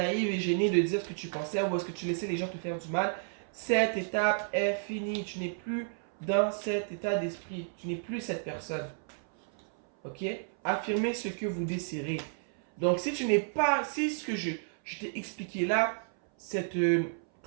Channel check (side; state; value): left; silent; 57 dB below the other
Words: et gênée de dire ce que tu pensais, ou est-ce que tu laissais les gens te faire du mal. Cette étape est finie, tu n'es plus dans cet état d'esprit, tu n'es plus cette personne. Ok? Affirmez ce que vous désirez. Donc, si tu n'es pas, si ce que je t'ai expliqué là, cette